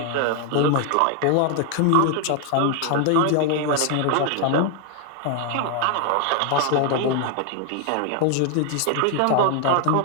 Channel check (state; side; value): different; both; correlation 0.00